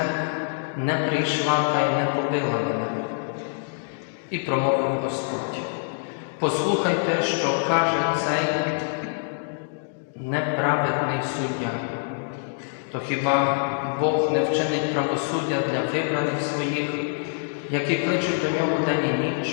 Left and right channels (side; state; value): right; silent; digital silence